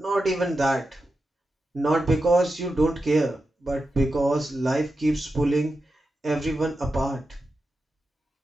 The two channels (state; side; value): normal; both; correlation 0.90